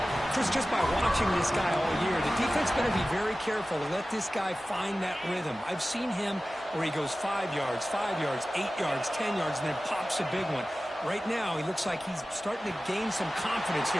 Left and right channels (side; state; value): both; normal; correlation 0.96